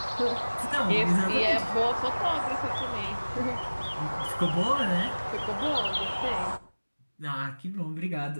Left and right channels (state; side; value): inverted; both; correlation -1.00